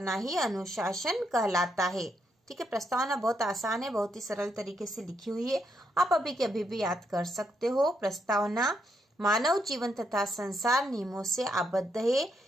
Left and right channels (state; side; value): normal; both; correlation 0.78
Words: ही अनुशासन कहलाता है। ठीक है, प्रस्तावना बहुत आसान है, बहुत ही सरल तरीके से लिखी हुई है, आप अभी के अभी भी याद कर सकते हो। प्रस्तावना, मानव जीवन तथा संसार नियमों से आबद्ध है।